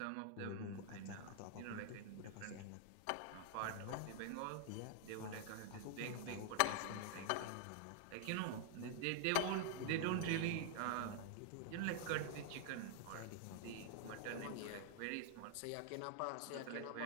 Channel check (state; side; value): different; both; correlation 0.00